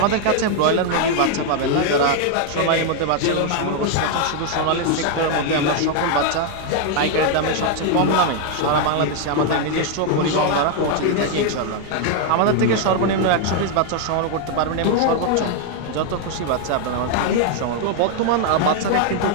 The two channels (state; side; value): different; both; correlation 0.00